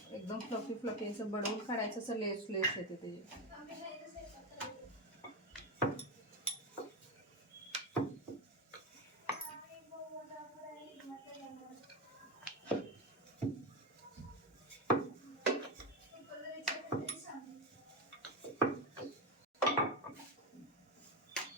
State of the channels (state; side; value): normal; both; correlation 0.14